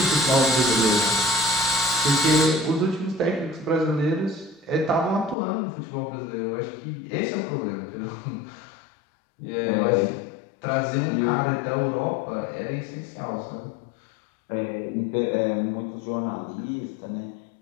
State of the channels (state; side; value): drops out; right; at 5.4 s